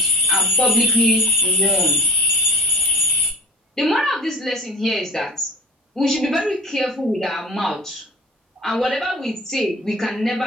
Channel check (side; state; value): both; normal; correlation 0.40